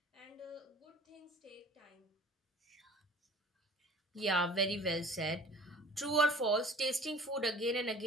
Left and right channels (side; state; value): both; normal; correlation 0.47